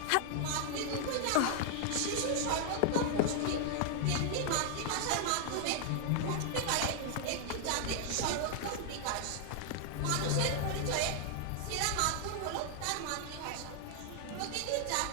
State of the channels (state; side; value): different; both; correlation 0.00